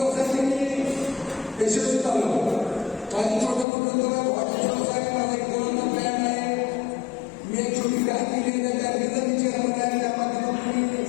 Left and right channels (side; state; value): right; drops out; at 3.7 s